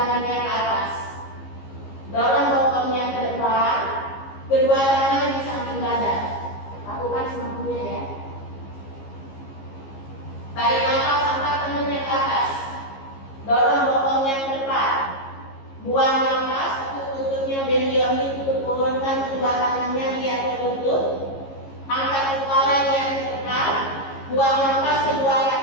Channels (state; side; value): late; right; 15 ms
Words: ke atas. Dorong bokongnya ke depan, kedua tangan di samping badan. Lakukan semampunya ya. Tarik nafas, angkat tangannya ke atas. Dorong bokongnya ke depan. Buang nafas, tekuk lututnya, bend your knee, turunkan kedua tangannya, lihat ke lutut. Angkat kepala, lihat ke depan. Buang nafas, kedua